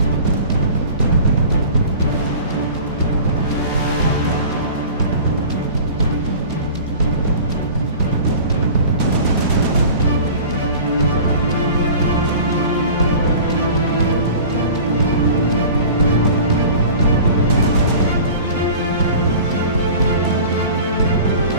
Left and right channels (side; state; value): both; inverted; correlation -0.41